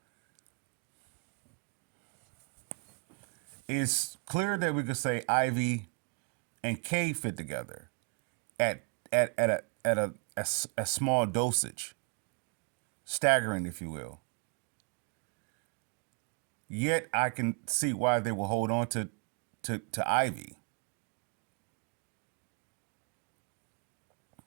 It's clear that we could say Ivy and K fit together at a small dosage, staggering, if you will. Yet I can see why they will hold on to Ivy.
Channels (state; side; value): quieter; left; 37.1 dB